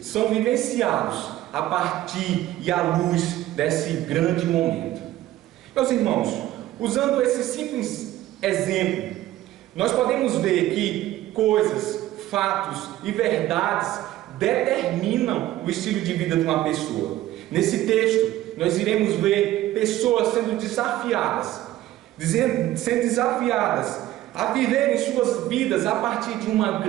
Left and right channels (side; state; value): left; quieter; 14.7 dB